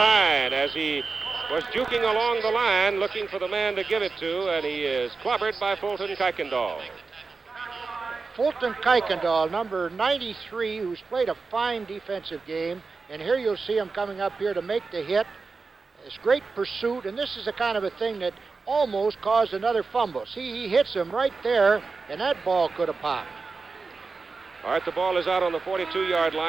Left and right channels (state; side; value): quieter; left; 4.3 dB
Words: as he was juking along the line looking for the man to give it to, and he is clobbered by Fulton Kuykendall. Fulton Kuykendall, number 93, who's played a fine defensive game, and here you'll see him coming up here to make the hit. It's great pursuit, and this is the kind of a thing that almost caused another fumble. See, he hits him right there, and that ball could have popped. All right, the ball is out on the 42-yard